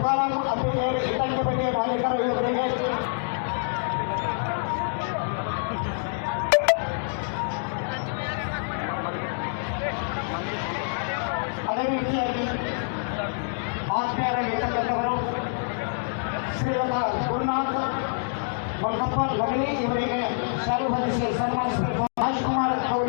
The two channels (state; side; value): silent; right; digital silence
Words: ಮುತ್ತಪ್ಪ ಲಗಲಿ ಇವರಿಗೆ ಶಾಲು ಹೊದಿಸಿ ಸನ್ಮಾನಿಸಬೇಕು. ರಾಜ್ಕುಮಾರ್